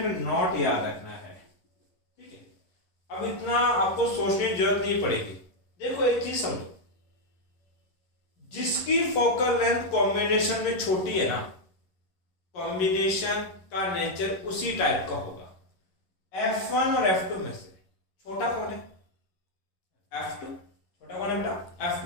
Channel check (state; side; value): late; right; 11 ms